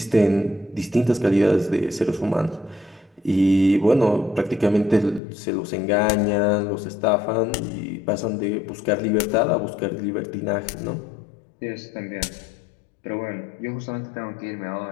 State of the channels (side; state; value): right; drops out; at 5.2 s